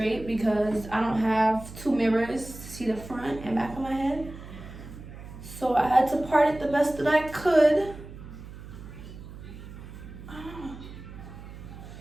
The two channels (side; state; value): right; noise; hum, 14 dB below the sound